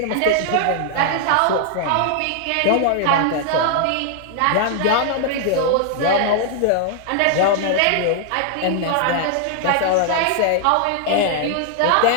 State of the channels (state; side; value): different; both; correlation 0.00